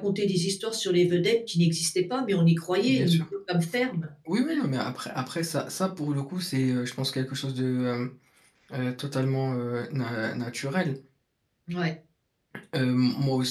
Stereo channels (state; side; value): identical; both; correlation 1.00